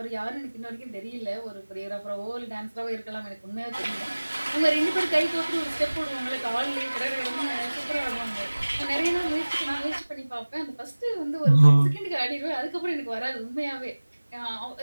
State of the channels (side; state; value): both; inverted; correlation -1.00